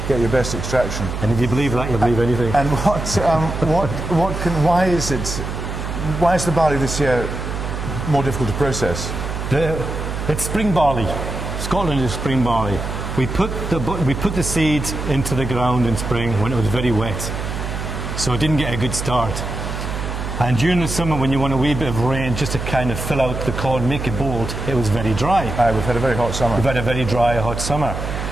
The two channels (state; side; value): noise; right; hum, 5 dB below the sound